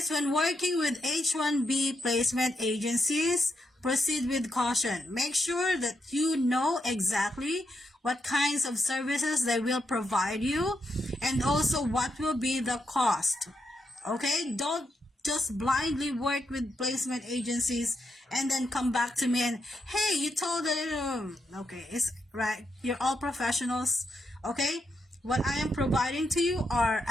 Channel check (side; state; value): both; normal; correlation 0.82